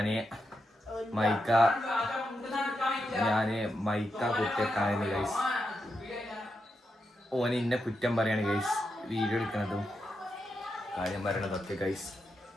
മൈക്ക ഞാന് മൈക്ക കുത്തിയേക്കാണെന്ന് ഗൈസ്. ഓന് ഇന്നെ കുറ്റം പറയാണ് ഗൈസ്. വീഡിയോ എടുക്കണതും കാര്യം പറയണതൊക്കെ ഗൈസ്.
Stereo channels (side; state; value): both; normal; correlation 0.86